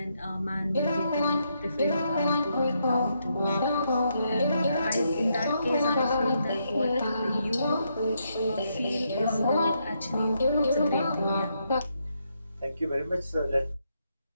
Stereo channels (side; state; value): both; inverted; correlation -0.79